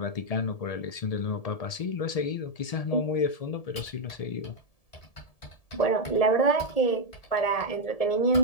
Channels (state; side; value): late; right; 1.7 ms